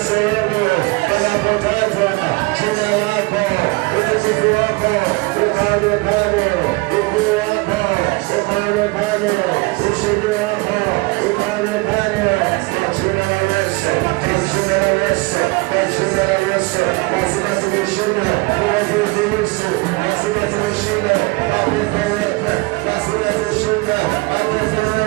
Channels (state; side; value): quieter; left; 25.6 dB